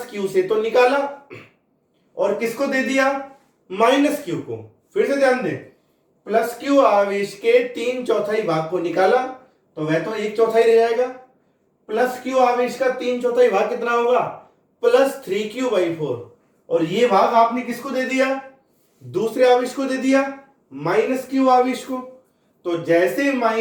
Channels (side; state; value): both; identical; correlation 1.00